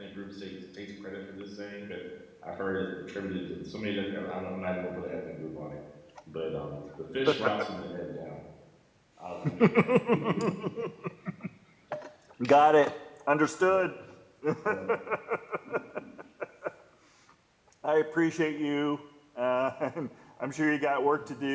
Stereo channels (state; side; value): identical; both; correlation 1.00